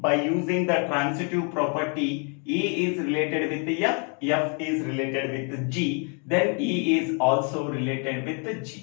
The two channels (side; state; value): right; quieter; 37.6 dB